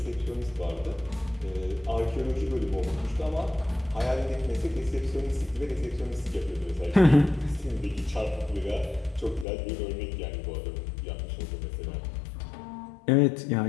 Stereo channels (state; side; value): drops out; right; at 9.5 s